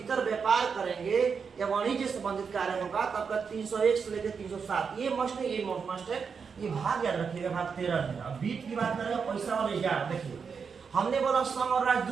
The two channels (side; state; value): left; quieter; 5.9 dB